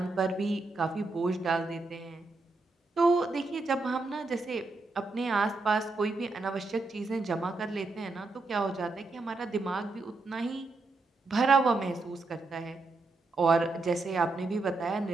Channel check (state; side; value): quieter; left; 3.4 dB